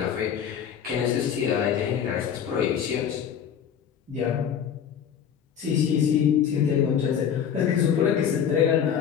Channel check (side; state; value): right; quieter; 8.3 dB